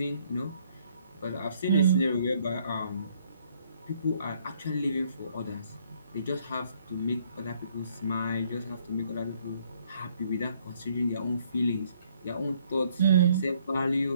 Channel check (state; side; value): inverted; both; correlation -0.66